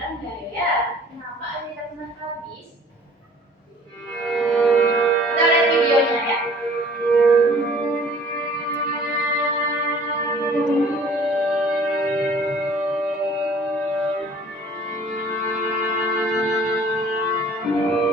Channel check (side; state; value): both; normal; correlation 0.53